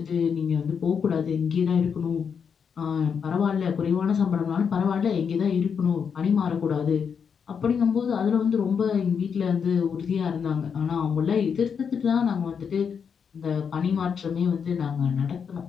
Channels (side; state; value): right; quieter; 6.7 dB